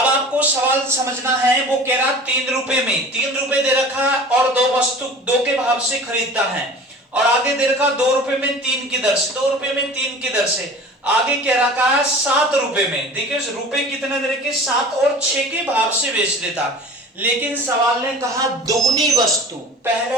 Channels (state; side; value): normal; both; correlation 0.41